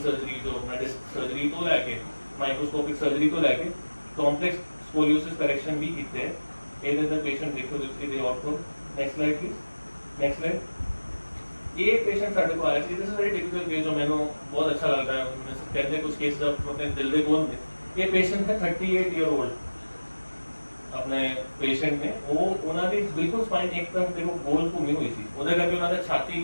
ਸਰਜਰੀ ਜੋ ਆਪਣਾ ਡਿਸਕ ਸਰਜਰੀ ਤੋਂ ਲੈ ਕੇ ਮਾਈਕਰੋਸਕੋਪਿਕ ਸਰਜਰੀ ਤੋਂ ਲੈ ਕੇ ਕੰਪਲੈਕਸ ਸਕੋਲੀਓਸਿਸ ਕਰੈਕਸ਼ਨ ਵੀ ਕੀਤੇ। ਇਹਦੇ ਅੰਦਰ ਪੇਸ਼ੈਂਟ ਦੇਖੋ ਤੁਸੀਂ ਦੇ outcome. Next slide please. Next slide. ਇਹ ਪੇਸ਼ੈਂਟ ਸਾਡੇ ਕੋਲ ਆਇਆ ਸੀ, this is very typical case ਜੋ ਮੈਨੂੰ ਬਹੁਤ ਅੱਛਾ ਲੱਗਦਾ ਹੈ। ਕਹਿੰਦੇ ਕੁਝ ਕੇਸ ਆਪਣੇ ਦਿਲ ਦੇ ਕੋਲ ਨੇ। ਇਹ ਪੇਸ਼ੈਂਟ ਹੈ 38 ਈਅਰ ओल्ड ਆਪਣੇ ਪੇਸ਼ੈਂਟ ਨੇ। ਉਹ ਉਹਨਾਂ ਦੀ ਬਿਲਕੁਲ ਸਪਾਈਨ ਇੱਕ ਤਰਫ ਦੇਖੋ ਗੋਲ ਘੁੰਮੀ ਹੋਈ ਸੀ, ਉਹਦੇ ਕਰਕੇ ਉਹਨਾਂ ਦਾ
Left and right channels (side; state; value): both; inverted; correlation -1.00